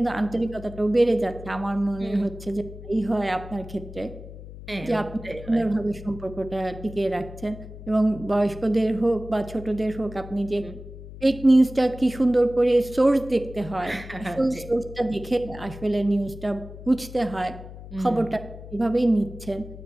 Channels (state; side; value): noise; left; hum, 14 dB below the sound